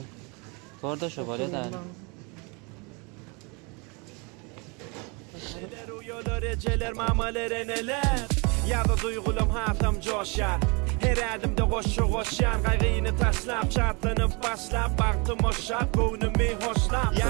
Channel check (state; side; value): quieter; left; 30.9 dB